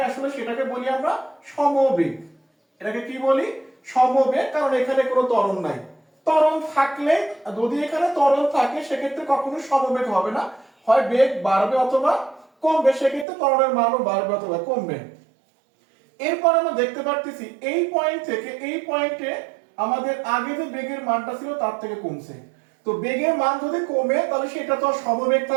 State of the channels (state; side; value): drops out; left; at 13.2 s